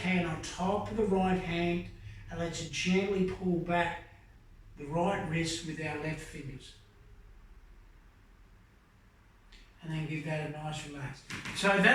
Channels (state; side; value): identical; both; correlation 1.00